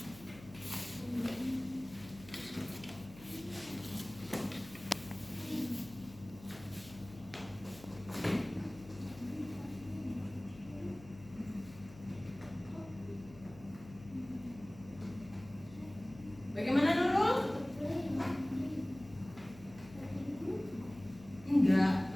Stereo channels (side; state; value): left; noise; hum, 18 dB below the sound